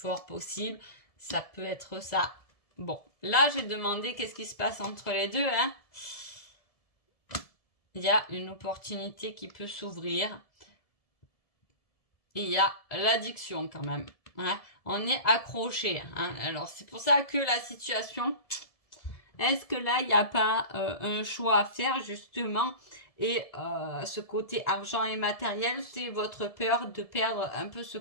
possible. Ça peut être ça. Bon, là, j'ai demandé qu'est-ce qui se passe entre les deux. Hein. Il y a une opportunité qui peut s'ouvrir. Et il y a l'addiction quand même. Hein. On est accroché. Hein. Alors, c'est pour ça que la situation... Est-ce que là, il n'y a pas un choix à faire, justement? Et ce côté argent et matériel, c'est votre peur de perdre un peu ce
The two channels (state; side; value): late; right; 1.7 ms